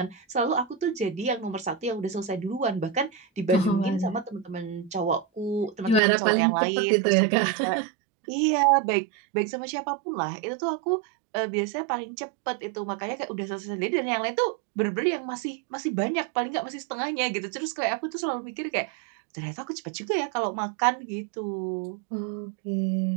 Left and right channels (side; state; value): left; drops out; at 6.0 s